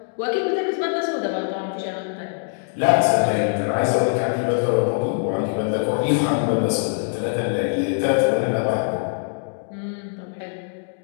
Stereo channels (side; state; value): right; silent; digital silence